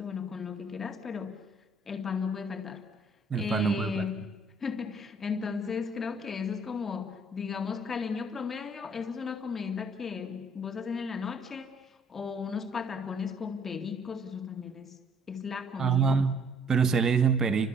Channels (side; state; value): both; normal; correlation 0.61